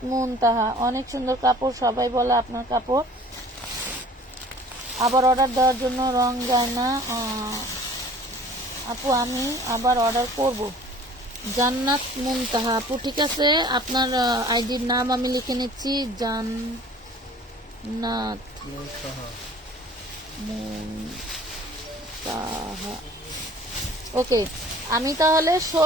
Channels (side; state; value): both; normal; correlation 0.49